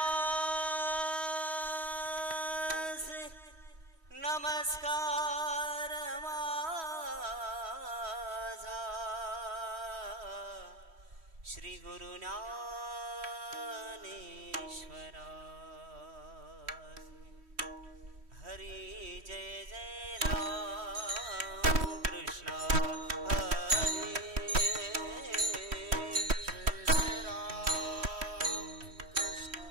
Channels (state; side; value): late; left; 3.1 ms